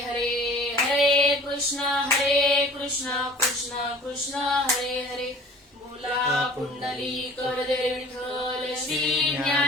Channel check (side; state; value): both; normal; correlation 0.47